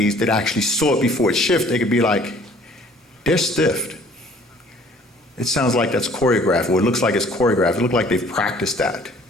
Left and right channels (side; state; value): both; normal; correlation 0.55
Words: that actually saw it before it shifted, they could be like, they're stiffed. It sounds like that's choreographed, or it looks like it's choreographed. It looks like they've practiced that.